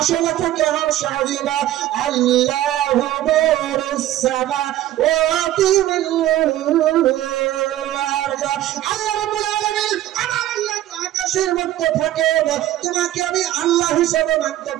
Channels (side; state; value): left; quieter; 13.7 dB